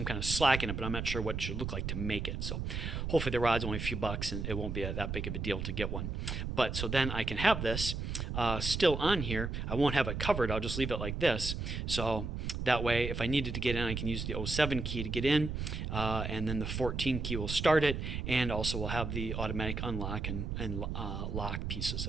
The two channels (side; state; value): right; noise; rumble, 3 dB below the sound